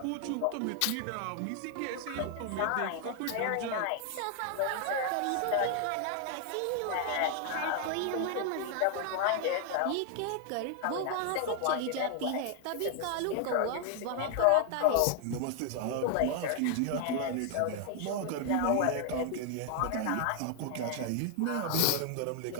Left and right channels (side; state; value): both; different; correlation 0.00